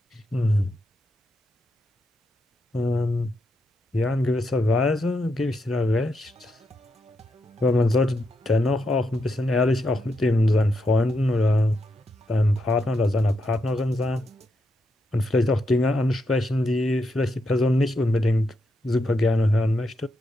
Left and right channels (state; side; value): normal; both; correlation 0.82